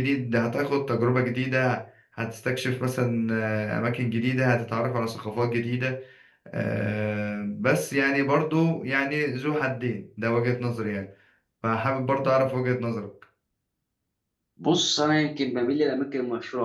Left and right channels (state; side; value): identical; both; correlation 1.00